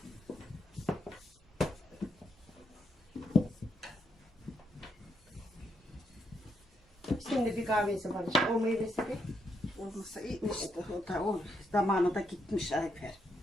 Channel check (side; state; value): both; normal; correlation 0.78